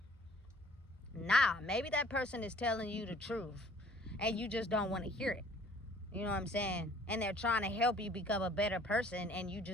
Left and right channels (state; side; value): normal; both; correlation 0.55